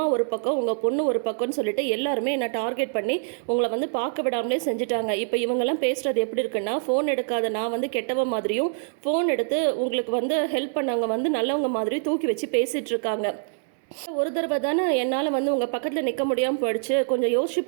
ஒரு பக்கம், உங்கள் பொண்ணு ஒரு பக்கம்னு சொல்லிட்டு எல்லாருமே என்னை டார்கெட் பண்ணி உங்களை வந்து பார்க்க விடாமலே செஞ்சுட்டாங்க. இப்போ இவங்கெல்லாம் பேசுகிறது எப்படி இருக்குன்னா, ஃபோன் எடுக்காத நான் வந்து கெட்டவ மாதிரியும், ஃபோன் எடுத்து உங்களுக்கு வந்து ஹெல்ப் பண்ணவங்க வந்து நல்லவங்க மாதிரியும் தூக்கி வச்சு பேசிகிட்டு இருக்காங்க. ஒரு தடவை தானே என்னால் வந்து உங்கள் பக்கத்தில் நிற்க முடியாமல் போயிடுச்சு. கொஞ்சம் யோசிச்சு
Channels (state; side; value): silent; left; digital silence